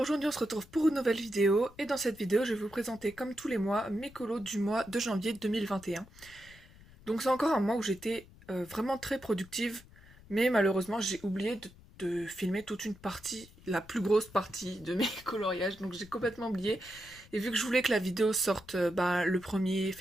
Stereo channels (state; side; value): noise; left; rumble, 23 dB below the sound